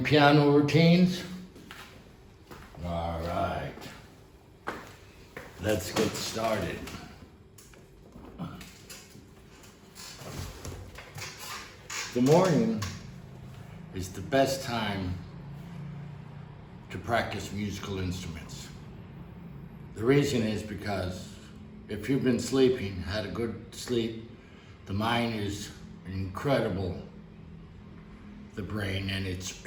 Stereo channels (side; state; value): both; identical; correlation 1.00